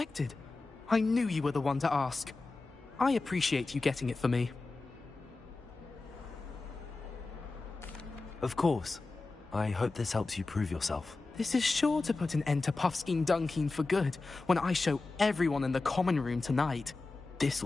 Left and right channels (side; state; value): right; quieter; 3.6 dB